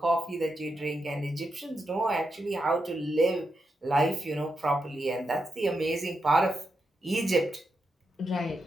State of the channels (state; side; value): normal; both; correlation 0.85